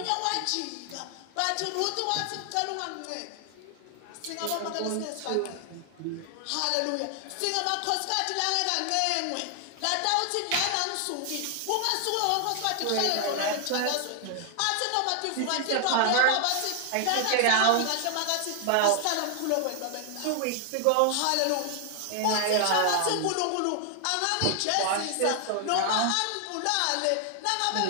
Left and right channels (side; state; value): both; different; correlation 0.00